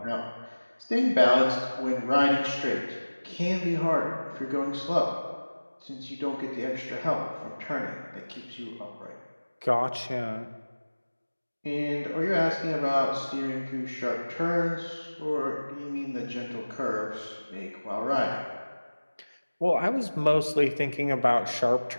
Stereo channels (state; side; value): inverted; both; correlation -1.00